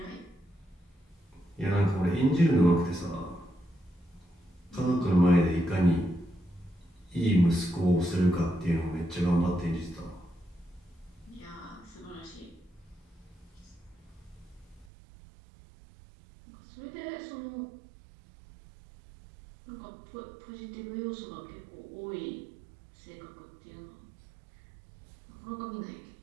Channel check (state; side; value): drops out; left; at 14.9 s